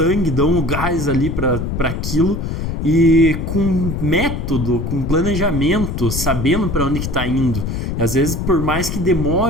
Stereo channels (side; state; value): left; noise; rumble, 3 dB below the sound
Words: dão o gás ali para aquilo, e com método, com planejamento, sabendo para onde que está indo. E às vezes, por mais que